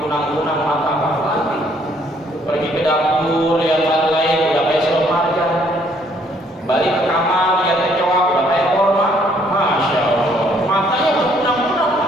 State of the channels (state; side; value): normal; both; correlation 0.65